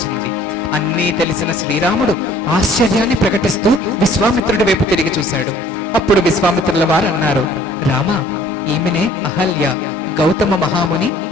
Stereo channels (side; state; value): both; normal; correlation 0.55